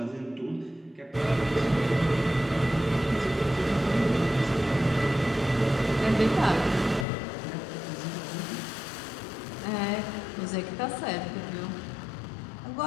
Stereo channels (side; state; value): right; drops out; at 7.1 s